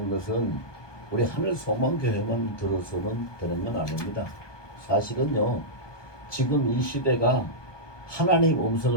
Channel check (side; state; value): right; late; 1.2 ms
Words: 것은 우리 하늘소망교회만 들어서는 되는 건 아닙니다. 사실은요, 지금 이 시대가 하나님